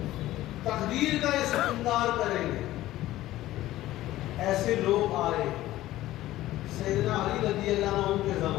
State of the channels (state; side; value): quieter; right; 15.4 dB